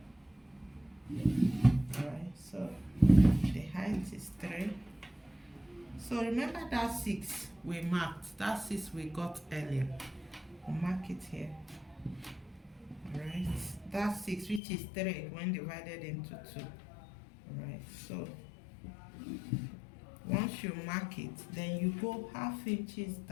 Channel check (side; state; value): right; drops out; at 14.6 s